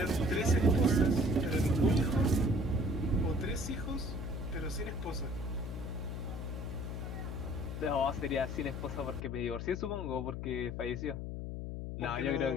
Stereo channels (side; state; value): left; noise; hum, 5 dB below the sound